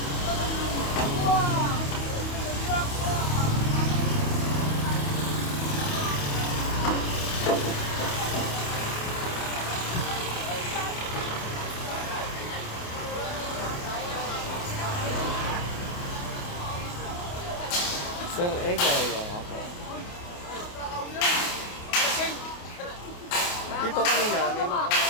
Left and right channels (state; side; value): late; right; 28 ms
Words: Sir Egay, nga po. Dito kanina, may mga